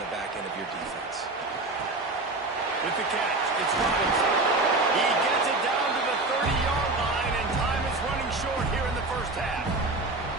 the back end of your defense. With the catch, it's Robinson. He gets it down to the 30-yard line, and time is running short here in the first half.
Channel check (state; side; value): quieter; left; 3.1 dB